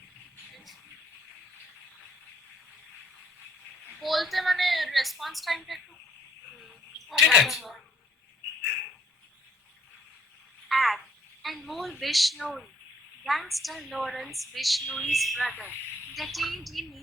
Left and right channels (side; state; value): both; normal; correlation 0.64